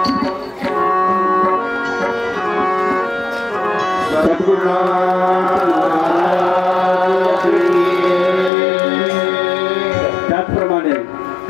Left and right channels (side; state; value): right; drops out; at 8.5 s